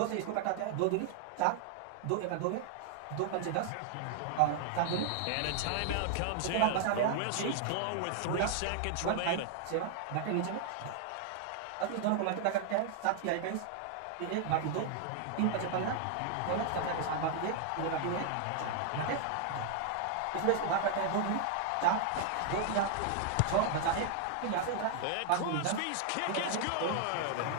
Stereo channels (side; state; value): both; different; correlation 0.00